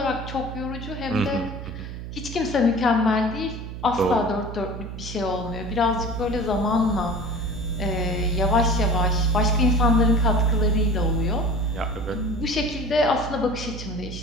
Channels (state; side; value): noise; right; hum, 9 dB below the sound